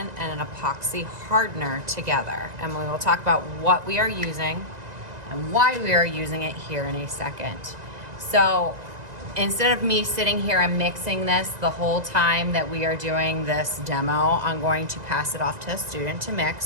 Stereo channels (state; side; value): late; left; 1.9 ms